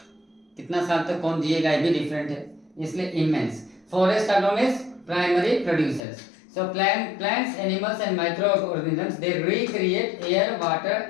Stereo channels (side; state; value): right; drops out; at 6.0 s